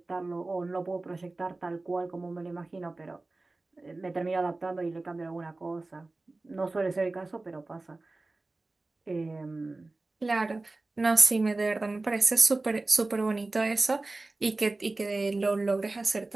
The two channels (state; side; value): quieter; left; 3.2 dB